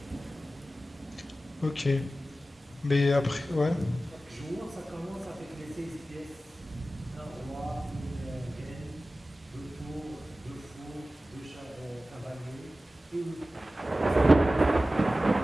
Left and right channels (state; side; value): normal; both; correlation 0.95